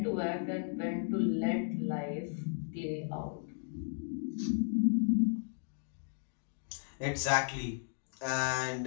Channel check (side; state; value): right; silent; digital silence